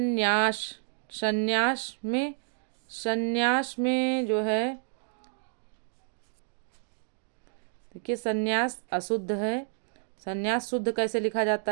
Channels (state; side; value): silent; left; digital silence